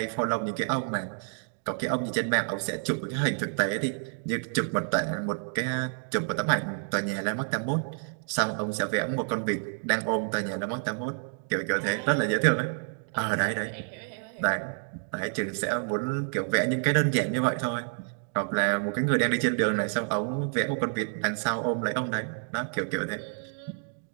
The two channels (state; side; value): silent; left; 59 dB below the other